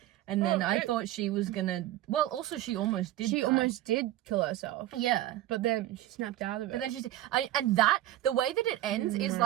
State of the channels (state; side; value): quieter; left; 14.2 dB